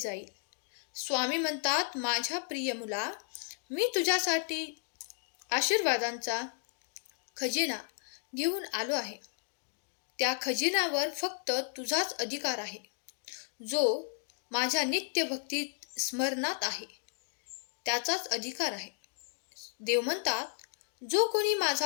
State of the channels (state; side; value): silent; right; 55 dB below the other